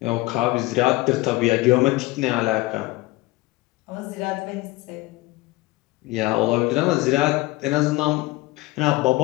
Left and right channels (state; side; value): quieter; right; 20.0 dB